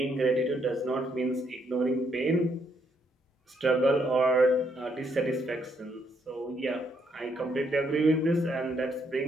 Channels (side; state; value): both; normal; correlation 0.73